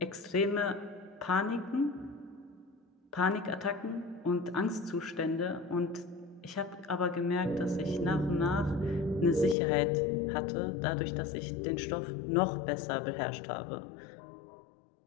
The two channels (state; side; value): drops out; right; at 9.6 s